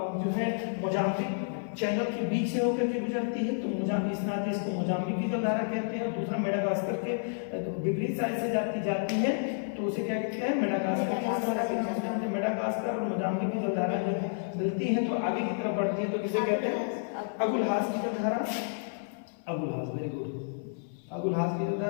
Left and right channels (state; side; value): silent; right; 57 dB below the other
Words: जो है मोजाम्बिक चैनल के बीच से होकर के गुजरती है, तो मोजाम्बिक इस नाते इसको मोजाम्बिक की जलधारा कहते हैं। दूसरा मेडागास्कर के विपरीत साइड से जाती है, तो उसे क्या कहते हैं, मेडागास्कर की जलधारा कहते हैं। मेडागास्कर और मोजाम्बिक की जलधारा जब मिलती है तो आगे की तरफ बढ़ती है, तो किसे कहते हैं, अगुलहास की जलधारा। अगुलहास, वेरी गुड, अगुलहास की